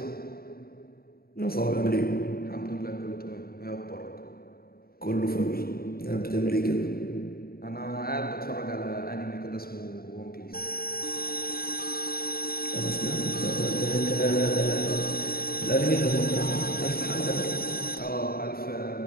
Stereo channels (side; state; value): right; late; 0.44 ms